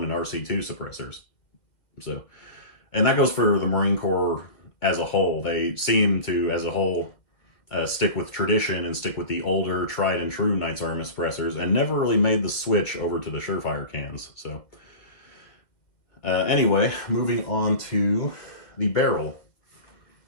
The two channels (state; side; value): late; right; 2.3 ms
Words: RC2 suppressors. So, and that goes for the Marine Corps as a whole. They seem to, as a whole, stick with tradition and stick with the older, tried and true Knights Armament suppressors, and never really made the switch over to the Surefire cans. So, anyway, moving on to the barrel.